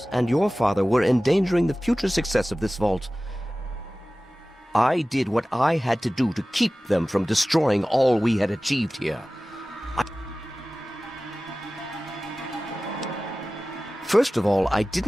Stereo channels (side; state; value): both; normal; correlation 0.97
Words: and your father were endangering the future success of this vault. I did what I had to do to keep them from destroying all we had achieved here. First of all, I